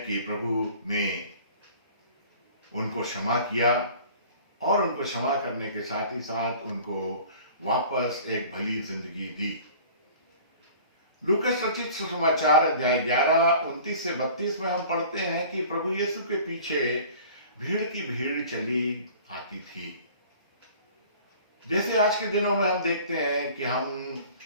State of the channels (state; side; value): inverted; both; correlation -0.46